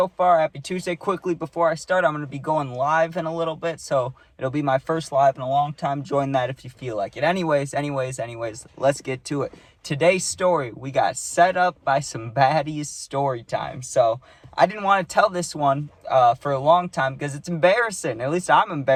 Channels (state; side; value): identical; both; correlation 1.00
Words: far. Happy Tuesday. Quickly, before I start, I'm going to be going live in a little bit, so it'll be my first live in a long time. Join that if you feel like it. Anyways, let's get to it. Today's story, we got set up by some baddies story time. So, I didn't want to tell this one for a long time because it's embarrassing. At least I'm